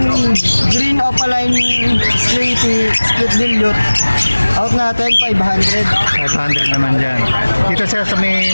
green opaline slaty split dilute. Out natin, 500. 500 naman dyan. Dito siya sa may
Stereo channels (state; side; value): inverted; both; correlation -1.00